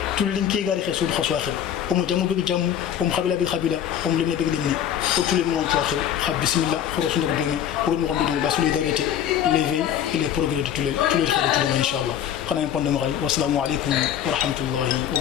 tulin ke gari khasu khasu akhir o mo jamu bi jamu o mo khabila bi khabila o mo limne bi limne o tulin mo to akhir khab bismillah khorosu ndak domi o mo ko la solidarité l'éveil et le progrès de tulil khadu inshallah khana en pondé mo kay wassalamu alaykum wa rahmatullahi wa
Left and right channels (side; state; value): right; quieter; 9.9 dB